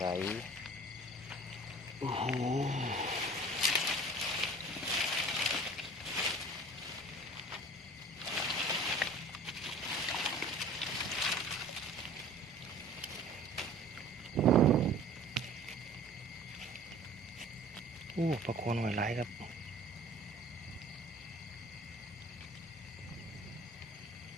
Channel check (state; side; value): normal; both; correlation 0.46